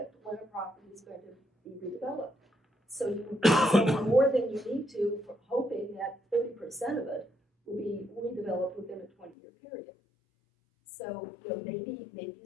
when a property is going to be redeveloped. So you zone more than you need to, hoping that 30% of it will be redeveloped within a 20-year period. So, maybe you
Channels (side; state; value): right; drops out; at 9.3 s